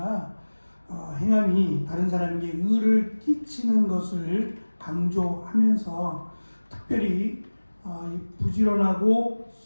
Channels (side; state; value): both; inverted; correlation -1.00